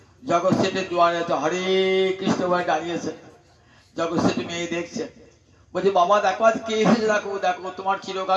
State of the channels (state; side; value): identical; both; correlation 1.00